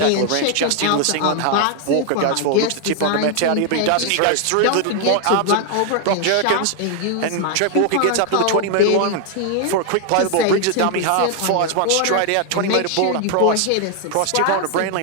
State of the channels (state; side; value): different; both; correlation 0.00